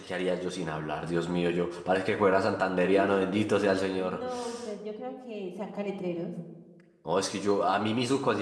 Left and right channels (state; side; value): identical; both; correlation 1.00